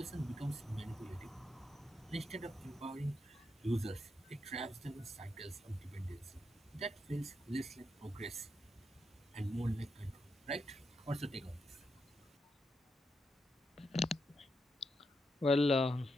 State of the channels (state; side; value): normal; both; correlation 0.83